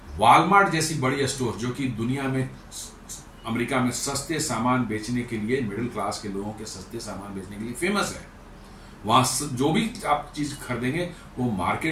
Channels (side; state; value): both; identical; correlation 1.00